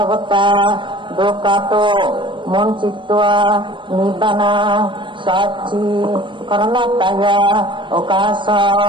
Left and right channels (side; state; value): left; late; 0.24 ms